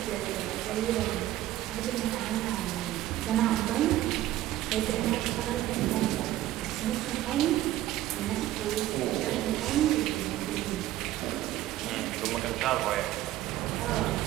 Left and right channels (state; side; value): quieter; left; 14.3 dB